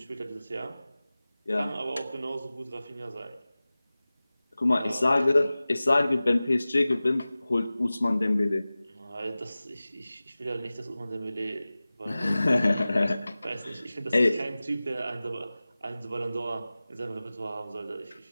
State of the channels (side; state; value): both; inverted; correlation -0.97